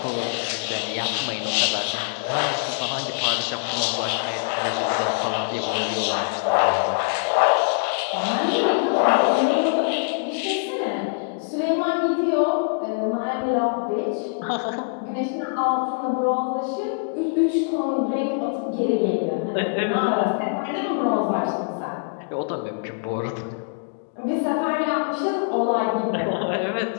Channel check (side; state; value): right; silent; digital silence